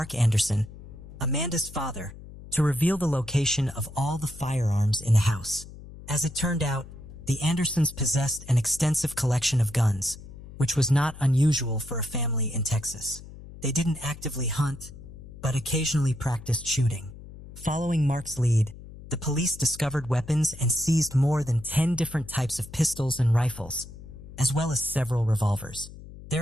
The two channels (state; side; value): noise; left; hum, 16 dB below the sound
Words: Anderson, Amanda's father, to reveal the location of all the firearms in the house. As it turned out, the Andersons possessed an extensive collection of guns, which was not unusual for a family in Texas. They didn't actively hunt, but occasionally practiced shooting. Following Mark's lead, the police discovered weapons and seized more than 10 different types of pistols and rifles, as well as several revolvers.